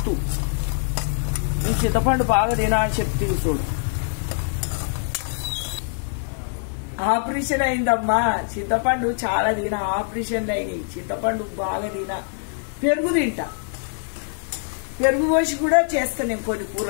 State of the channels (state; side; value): silent; right; digital silence